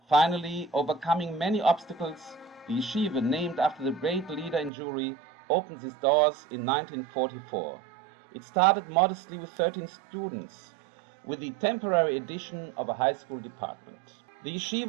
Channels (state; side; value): drops out; left; at 4.7 s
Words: Finally, overcoming many obstacles, the yeshiva, named after the great leader in Jewry, opened its doors in 1944. It started modestly with 13 students, with the temporary addition of a high school department. The